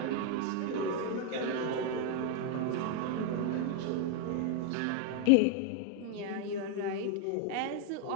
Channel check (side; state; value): both; different; correlation 0.01